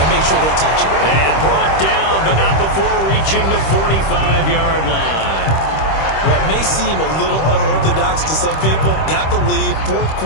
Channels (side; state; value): right; late; 26 ms